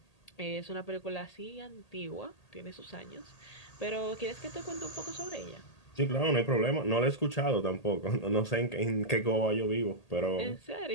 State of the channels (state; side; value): late; right; 1.8 ms